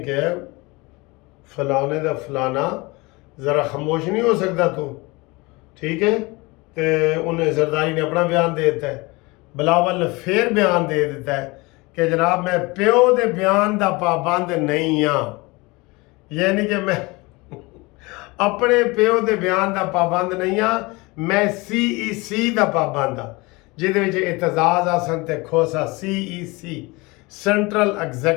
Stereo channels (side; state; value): right; quieter; 24.4 dB